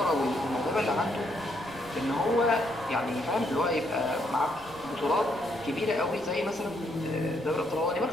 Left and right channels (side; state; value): left; noise; rumble, 25 dB below the sound